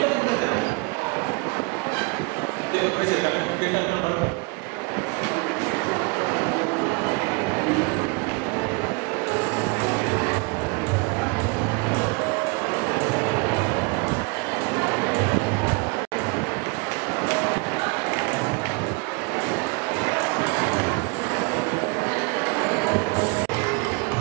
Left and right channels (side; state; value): left; quieter; 30.3 dB